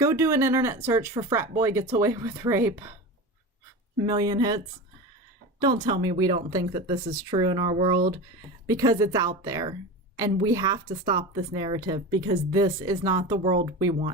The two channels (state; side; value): normal; both; correlation 0.28